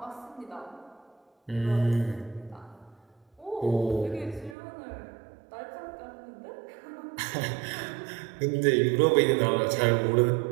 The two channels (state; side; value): drops out; left; at 4.5 s